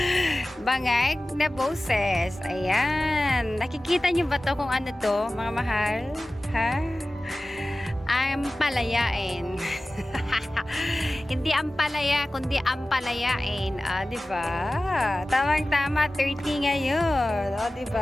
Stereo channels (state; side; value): normal; both; correlation 0.96